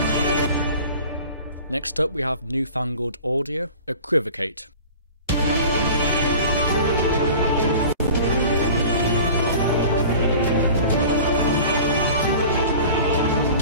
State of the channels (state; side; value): inverted; both; correlation -0.41